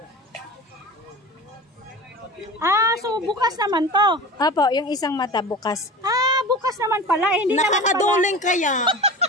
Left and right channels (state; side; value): normal; both; correlation 0.34